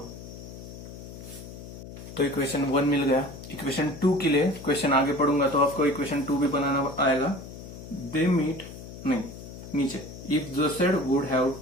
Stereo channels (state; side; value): noise; left; hum, 13 dB below the sound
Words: तो इक्वेशन 1 मिल गया। इक्वेशन 2 के लिए क्वेश्चन आगे पढ़ूंगा तो आपको इक्वेशन 2 भी बनाना आएगा। दे मीट नहीं नीचे, if Joseph would have